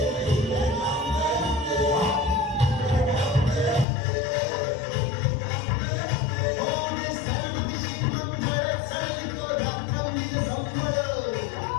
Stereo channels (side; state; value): right; drops out; at 3.9 s